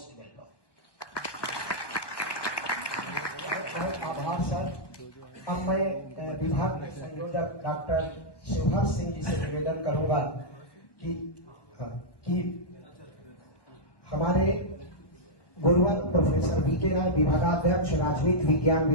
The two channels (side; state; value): right; late; 1.2 ms